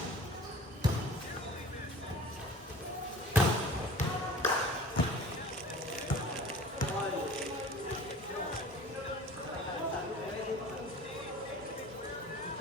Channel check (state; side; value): normal; both; correlation 0.43